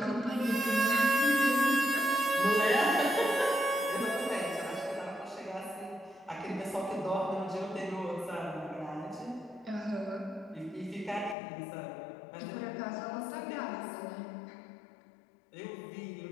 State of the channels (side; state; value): right; drops out; at 11.4 s